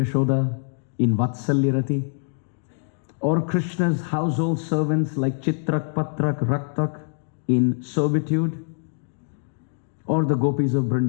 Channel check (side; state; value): right; silent; digital silence